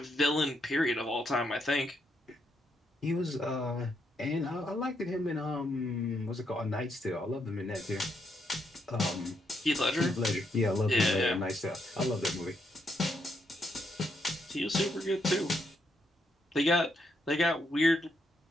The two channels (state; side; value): normal; both; correlation 0.78